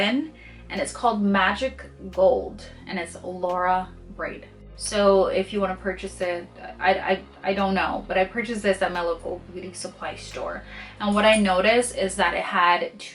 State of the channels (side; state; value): both; identical; correlation 1.00